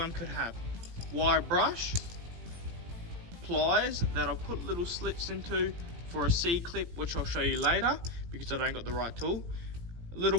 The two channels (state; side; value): late; left; 17 ms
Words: could have. Wire brush, pliers that I've put little slits into for a C-clip, which I'll show you later because I don't got the right tool. A little